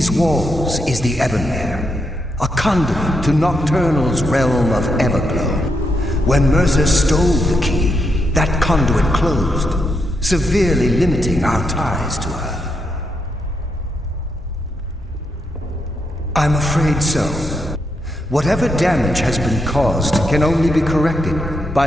walls is the Ebonmere, a conduit to Nocturnal's realm of Everglow. When Mercer stole the key, that conduit closed, severely limiting our ties to her. I'm afraid so. Whatever damage has been caused can only be corrected by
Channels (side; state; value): both; normal; correlation 0.81